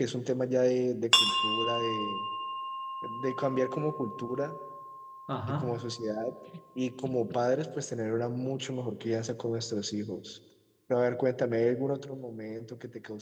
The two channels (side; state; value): both; identical; correlation 1.00